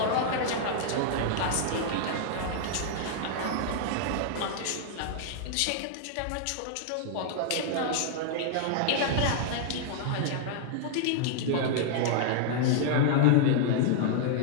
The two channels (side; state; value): both; different; correlation -0.01